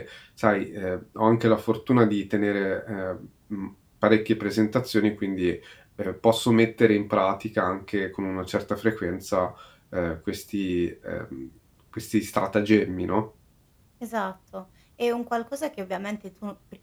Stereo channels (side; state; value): both; identical; correlation 1.00